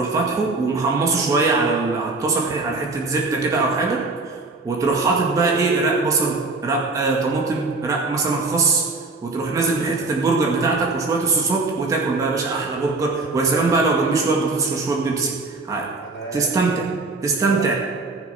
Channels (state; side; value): quieter; left; 3.5 dB